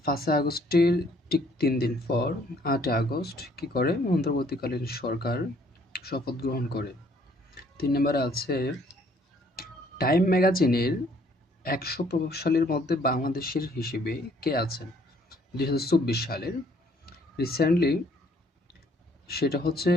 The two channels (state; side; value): normal; both; correlation 0.63